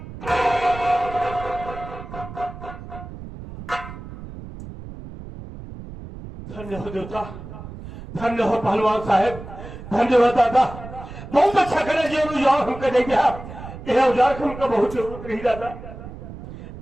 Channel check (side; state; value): right; noise; rumble, 12 dB below the sound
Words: धन्य हो देवता, धन्य हो पहलवान साहेब, धन्य हो दादा। बहुत अच्छा करे जी औजार हमको दे दिया। यह औजार की हमको बहुत जरूरत रही दादा।